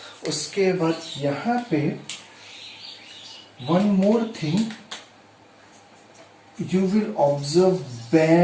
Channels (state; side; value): identical; both; correlation 1.00